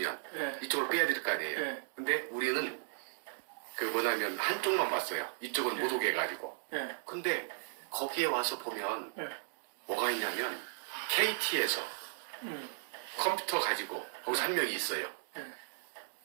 이쪽으로 빼야 될 거 아니에요. 근데 우리는 한쪽만 봤어요. 이쪽은 못 오게 해가지고. 근데 거기에 와서 보면 뭐가 있냐면 KT에서 컴퓨터 가지고 거기서 한 명이 있어요.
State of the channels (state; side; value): silent; left; digital silence